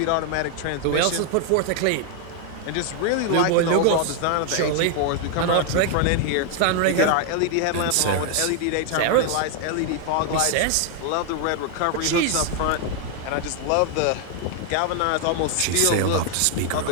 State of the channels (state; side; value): different; both; correlation 0.00